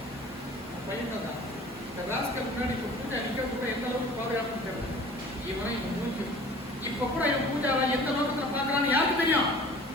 பையன் தான் இந்த ராஸ்கல் முன்னாடி இப்போ பூஜா நிற்க கூட எந்த அளவுக்கு பாதுகாப்புன்னு தெரியல. இவன் இவன் மூஞ்சி இப்ப கூட இவன் பூஜாவை எந்த நோக்கத்துல பாக்குறான்னு யாருக்கு தெரியும்?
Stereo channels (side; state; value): both; normal; correlation 0.45